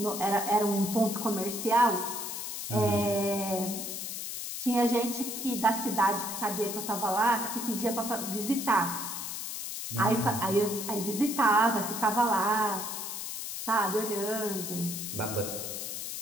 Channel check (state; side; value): noise; left; hiss, 6 dB below the sound